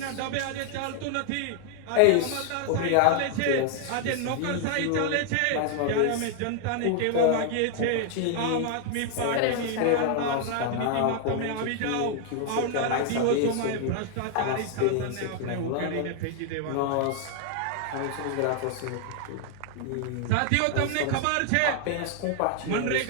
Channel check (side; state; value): both; different; correlation 0.00